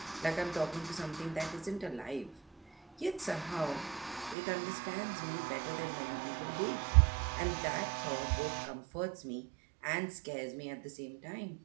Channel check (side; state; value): left; drops out; at 4.4 s